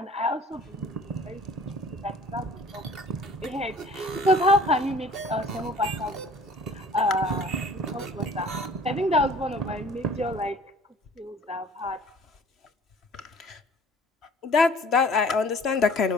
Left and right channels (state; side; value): normal; both; correlation 0.50